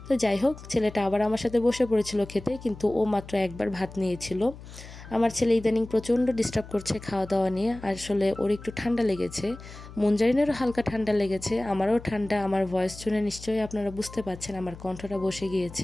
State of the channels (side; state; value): left; noise; hum, 16 dB below the sound